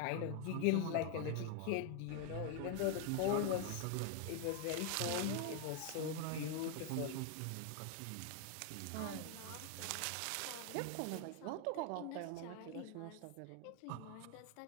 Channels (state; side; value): different; both; correlation 0.01